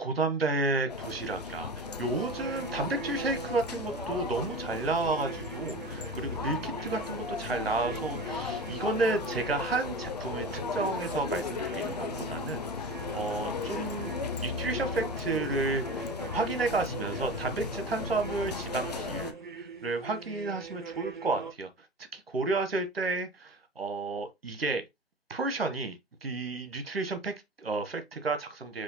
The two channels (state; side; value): normal; both; correlation 0.31